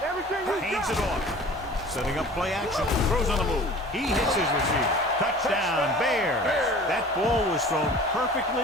Hands it off. Setting up play action. Throws on the move. He hits his receiver. Touchdown, Bears. That ball was thrown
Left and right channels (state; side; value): normal; both; correlation 0.44